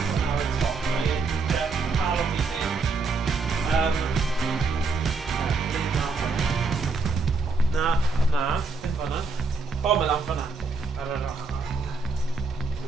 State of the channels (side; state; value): left; quieter; 4.2 dB